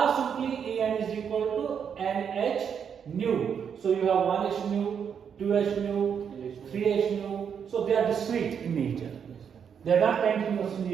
simply En is equal to nh nu. So you have 1h nu, 2h nu, 3h nu. So they are discrete in nature. They are not continuous in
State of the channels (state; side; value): quieter; left; 7.5 dB